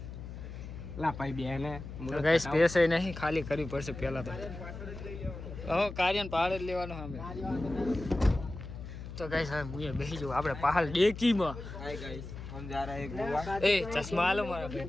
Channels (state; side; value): noise; left; hum, 10 dB below the sound